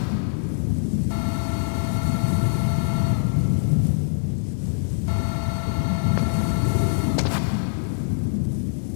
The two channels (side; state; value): right; silent; digital silence